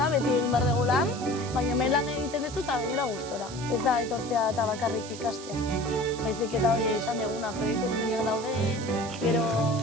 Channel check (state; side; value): noise; right; hiss, 14 dB below the sound